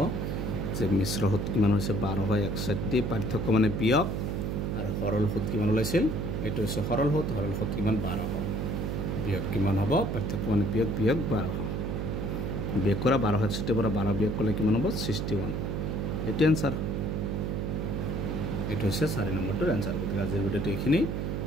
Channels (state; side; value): noise; right; hum, 2 dB below the sound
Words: যে মিশ্ৰ সুত কিমান হৈছে 1261 পাৰ্থক্য মানে বিয়োগ আৰু সৰল সুত কিমান ওলাইছিল এইটো হৈছে সৰল সুত কিমান 1200 বিয়োগ কিমান হ'ব পাৰ্থক্য মানে বিয়োগ 1200 বিয়োগ কৰা 1261 পৰা 12 বিয়োগ কৰিলে কিমান হ'ব 61 এইটো এনসাৰ এইটো হৈছে 4 নম্বৰটোৰ এনসাৰ গতিকে আজিৰ ভিডিঅ'টো এইখিনি